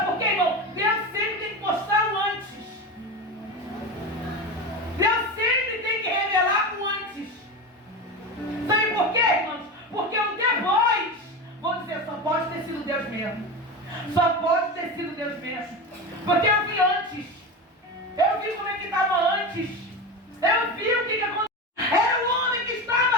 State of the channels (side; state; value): both; normal; correlation 0.23